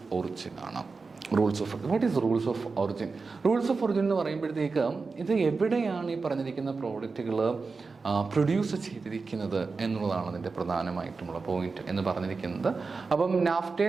ഒറിജിൻ ആണ്. What is rules of origin? Rules of origin എന്ന് പറയുമ്പോഴത്തേക്ക് ഇത് എവിടെയാണ് ഈ പറഞ്ഞിരിക്കുന്ന പ്രോഡക്റ്റുകൾ പ്രൊഡ്യൂസ് ചെയ്തിരിക്കുന്നത് എന്നുള്ളതാണ് അതിൻ്റെ പ്രധാനമായിട്ടുമുള്ള പോയിന്റ് എന്ന് പറഞ്ഞിരിക്കുന്നത്. അപ്പം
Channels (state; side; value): quieter; left; 4.4 dB